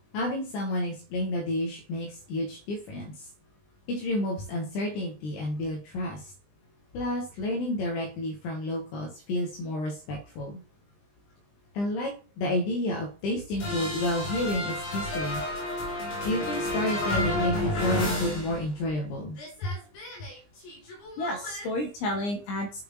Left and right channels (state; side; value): late; right; 20 ms